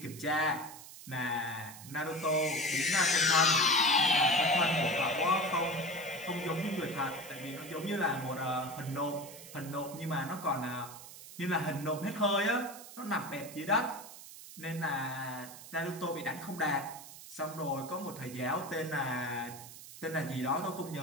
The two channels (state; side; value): noise; right; hiss, 15 dB below the sound